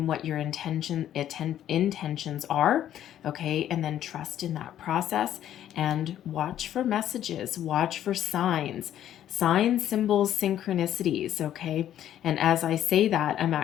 what your intentions are. Okay, and then trust in that process and watch for messages, watch for signs, symbols, synchronicities. Okay, and as I say that, I'm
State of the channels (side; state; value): right; quieter; 11.3 dB